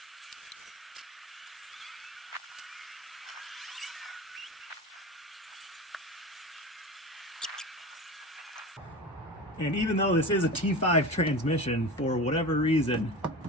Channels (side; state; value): both; normal; correlation 0.30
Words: And even though this is a T5 transmission, for whatever reason,